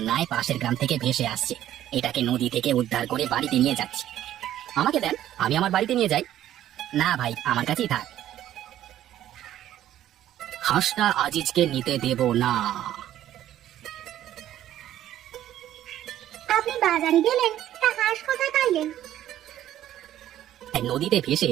পাশের গ্রাম থেকে ভেসে আসছে। এটাকে নদী থেকে উদ্ধার করে বাড়িতে নিয়ে যাচ্ছি। আমাকে দেন, আমি আমার বাড়িতে নিয়ে যাই। না ভাই, আমার কাছেই থাক। হাঁসটা আজিজকে নিতে দেব না। আপনি বাজারে গেলেন, তা হাঁস কোথায় পাইলেন? নদীতে ভেসে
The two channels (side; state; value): left; quieter; 12.3 dB